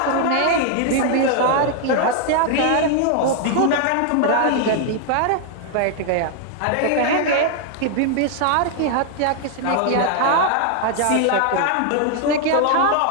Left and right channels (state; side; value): different; both; correlation 0.00